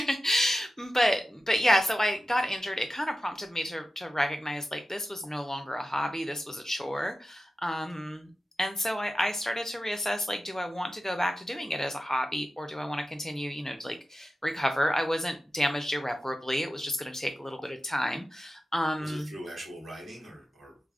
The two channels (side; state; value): both; normal; correlation 0.93